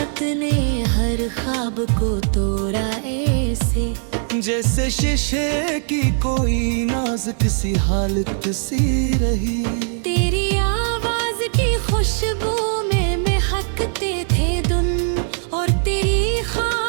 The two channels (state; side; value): silent; left; digital silence